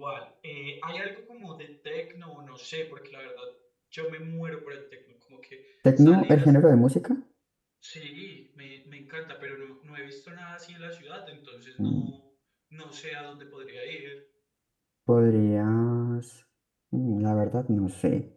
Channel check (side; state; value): both; identical; correlation 1.00